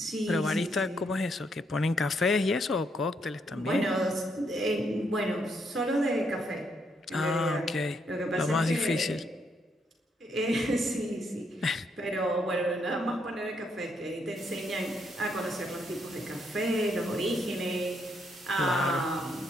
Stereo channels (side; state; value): both; normal; correlation 0.75